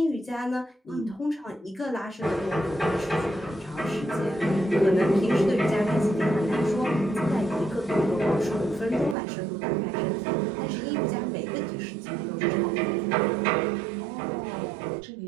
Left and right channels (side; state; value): left; drops out; at 9.2 s